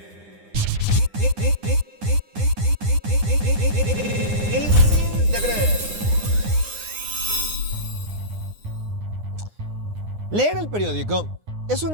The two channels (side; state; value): left; late; 9.9 ms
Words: Difícil de creer. Leer el periódico es